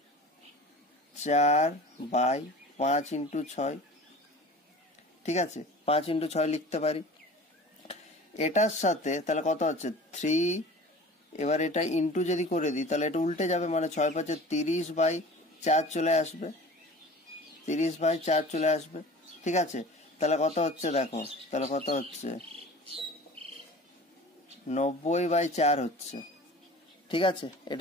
4/5 × 6, ঠিক আছে, 5 × 6 লিখতে পারি। এটার সাথে তাহলে কত হচ্ছে 3, এবার এটা ইন্টু যদি করে দিই তাহলে এটা উল্টে যাবে, মানে 6 × 5 = 30/4 চলে আসবে, 30/4 চলে আসবে। ঠিক আছে, তাহলে কত হচ্ছে দেখো, তাহলে কত হচ্ছে 90/4 হচ্ছে। ঠিক আছে,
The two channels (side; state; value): both; normal; correlation 0.40